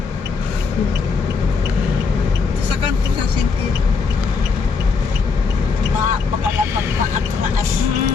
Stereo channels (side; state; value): right; quieter; 5.0 dB